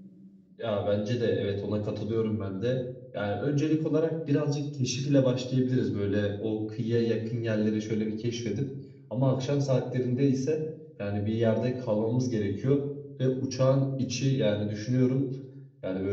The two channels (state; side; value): identical; both; correlation 1.00